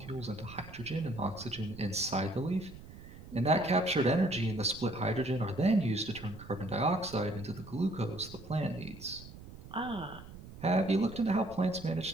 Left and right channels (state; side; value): noise; right; rumble, 15 dB below the sound